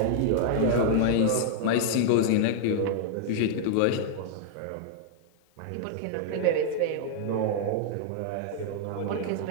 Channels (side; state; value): both; different; correlation -0.01